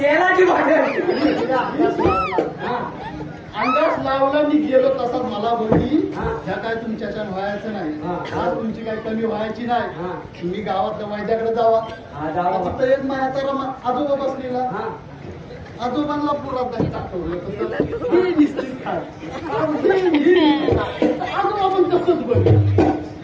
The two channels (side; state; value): both; identical; correlation 1.00